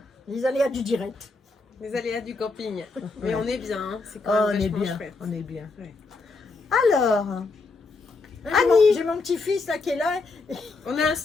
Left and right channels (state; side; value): quieter; right; 3.8 dB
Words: Les aléas du direct. Les aléas du camping. Mais on est bien, hein. C'est Oh, quand on même est vachement bien. chouette. On est bien. Ouais. Alors, J'ai mon petit-fils là qui est là. On a un